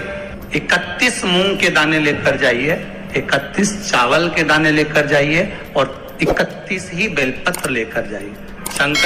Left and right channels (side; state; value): both; identical; correlation 1.00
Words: 31 मूंग के दाने लेकर जाइए, 31 चावल के दाने लेकर जाइए और 31 ही बेलपत्र लेकर जाइए।